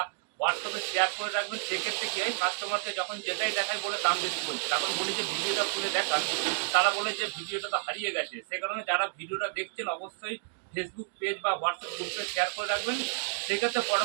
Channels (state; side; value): silent; left; digital silence